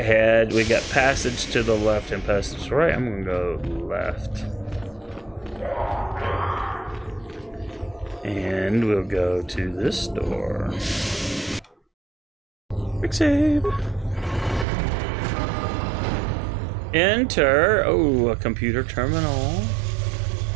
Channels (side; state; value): left; drops out; at 14.7 s